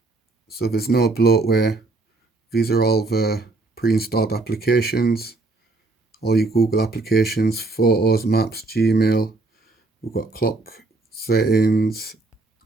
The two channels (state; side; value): quieter; left; 3.3 dB